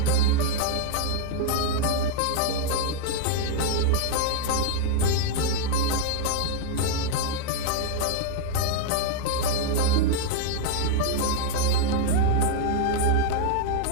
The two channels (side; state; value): both; different; correlation 0.00